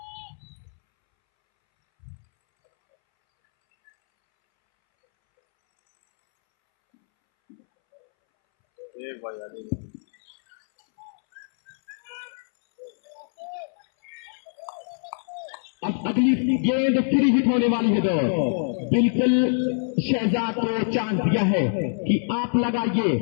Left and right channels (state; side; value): silent; right; 62 dB below the other